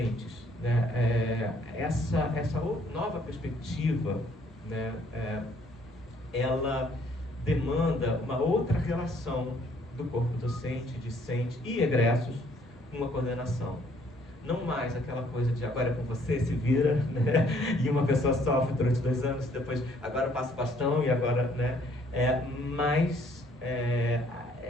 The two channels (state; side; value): normal; both; correlation 0.63